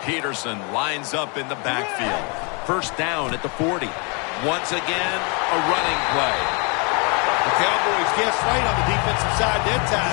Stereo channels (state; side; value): quieter; right; 33.8 dB